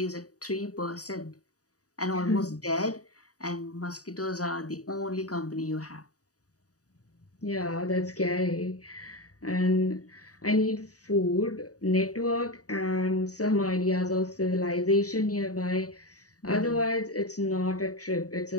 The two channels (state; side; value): late; right; 0.67 ms